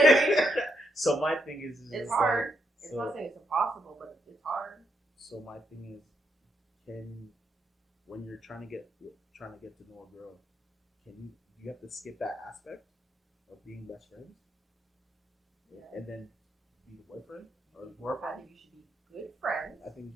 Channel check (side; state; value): both; normal; correlation 0.79